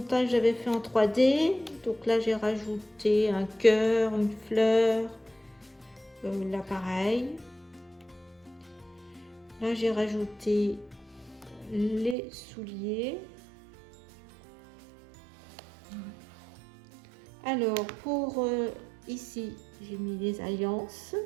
j'avais fait en 3D. Donc là, j'ai rajouté un cœur, une fleur, là pareil. Là, j'ai rajouté les souliers. Alors, pour ici, j'ai mis les alliances.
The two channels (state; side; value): drops out; left; at 12.2 s